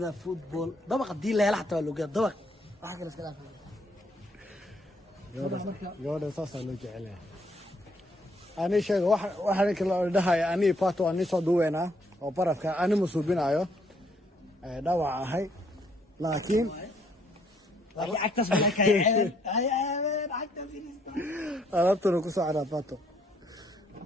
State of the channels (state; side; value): normal; both; correlation 0.69